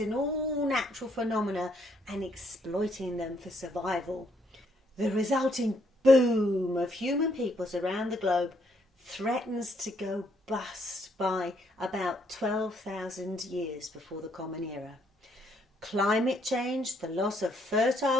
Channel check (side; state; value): both; normal; correlation 0.71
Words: all natural phenomena and exploiting them for survival. The resulting boom of human peoples around the globe threatens to go bust by about 12,000 years before the Common Era. Climate change, the loss of